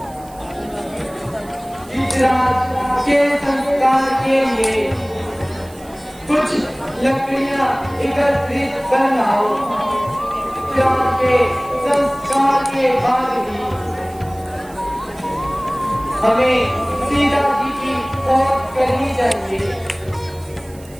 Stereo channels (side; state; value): right; noise; hiss, 24 dB below the sound